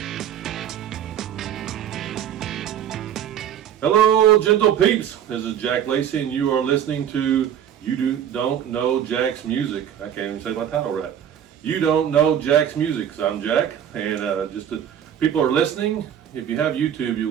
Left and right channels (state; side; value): quieter; left; 9.6 dB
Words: gentle peeps. This is Jack Lacy, and you are listening to Don't Know Jack's Music. I can't even say my title right. You Don't Know Jack's Music. So I'm Jack, and people are listening. If you have YouTube,